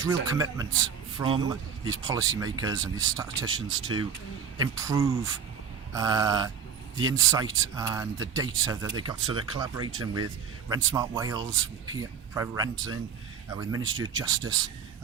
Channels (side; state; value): left; quieter; 7.1 dB